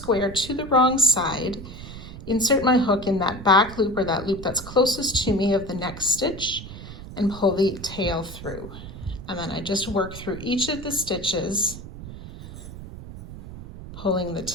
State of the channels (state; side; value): noise; right; rumble, 12 dB below the sound